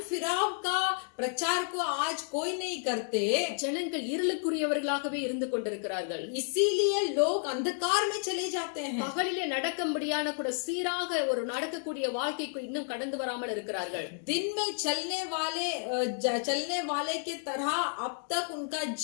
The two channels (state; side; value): silent; right; 57 dB below the other